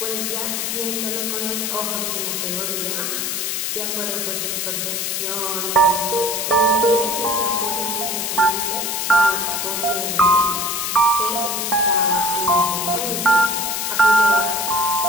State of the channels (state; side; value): noise; left; hiss, 1 dB below the sound